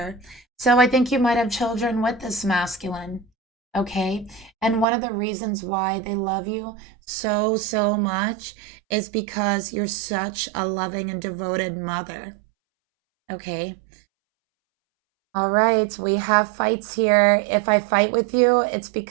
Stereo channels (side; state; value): left; drops out; at 4.9 s